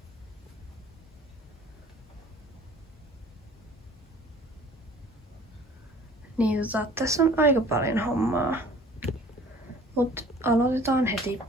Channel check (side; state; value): both; normal; correlation 0.50